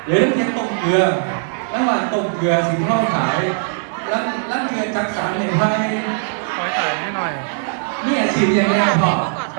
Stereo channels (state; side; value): silent; left; digital silence